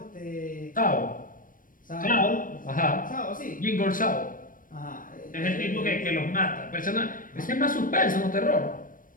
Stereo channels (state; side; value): late; right; 0.40 ms